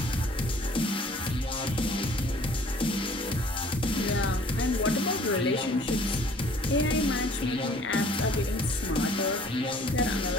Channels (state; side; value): normal; both; correlation 0.54